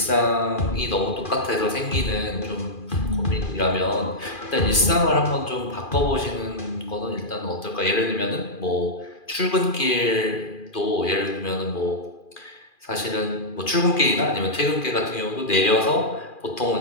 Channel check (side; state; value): right; late; 2.4 ms